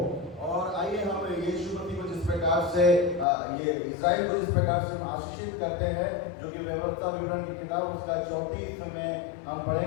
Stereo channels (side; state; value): right; drops out; at 3.2 s